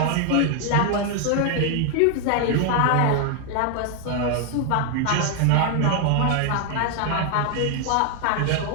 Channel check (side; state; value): both; different; correlation 0.01